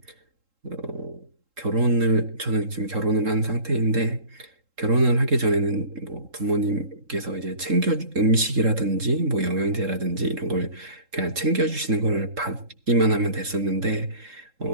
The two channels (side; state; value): left; late; 3.7 ms